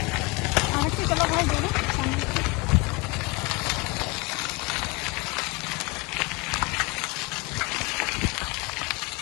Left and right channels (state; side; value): quieter; right; 25.6 dB